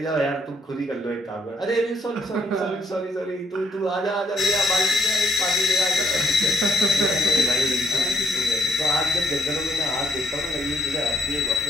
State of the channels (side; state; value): both; normal; correlation 0.65